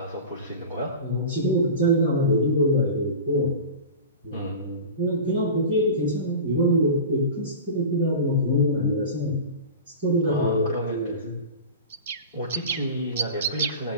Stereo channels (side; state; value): both; inverted; correlation -0.32